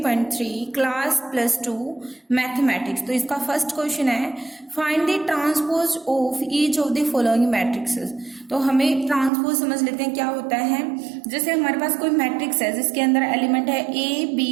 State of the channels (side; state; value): left; drops out; at 9.3 s